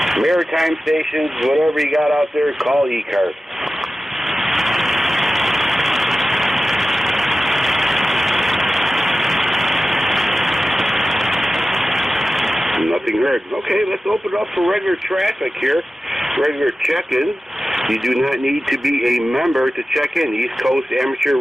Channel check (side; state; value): both; normal; correlation 0.95